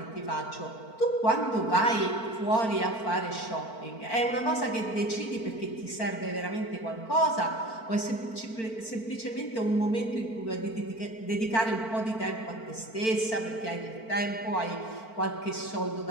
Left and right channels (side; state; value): right; late; 4.5 ms